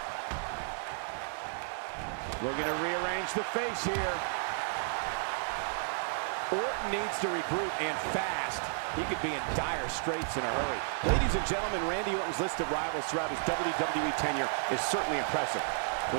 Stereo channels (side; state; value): left; silent; 56 dB below the other